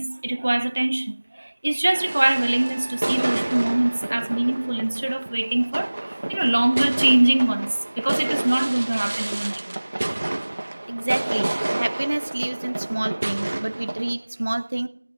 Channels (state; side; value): inverted; both; correlation -1.00